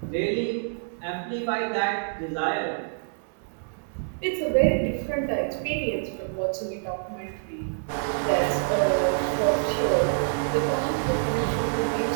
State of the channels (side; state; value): left; silent; digital silence